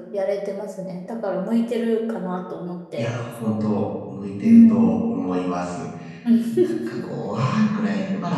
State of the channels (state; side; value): identical; both; correlation 1.00